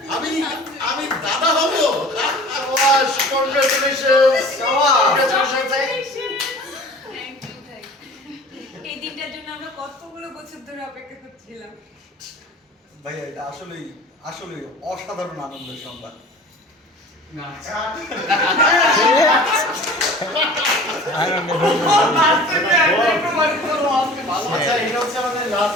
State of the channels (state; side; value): normal; both; correlation 0.43